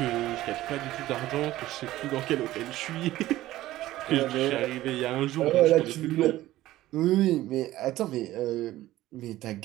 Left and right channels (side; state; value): left; quieter; 15.6 dB